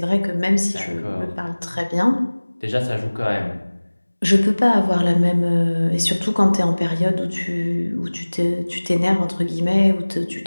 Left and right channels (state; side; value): inverted; both; correlation -1.00